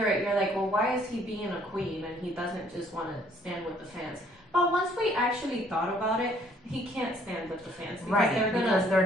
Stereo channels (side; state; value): both; normal; correlation 0.62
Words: it, you're like, well, why is he being a queen and he doesn't just want to stand with the fans? But once we actually thought about it, he can't stand with the fans. Because